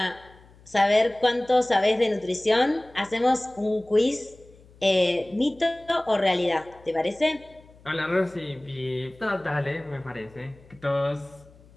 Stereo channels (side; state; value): left; noise; hum, 26 dB below the sound